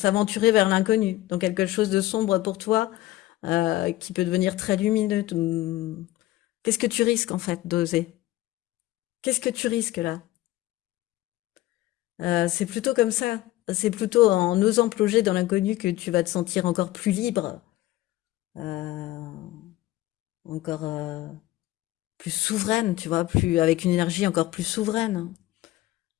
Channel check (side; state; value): right; quieter; 16.5 dB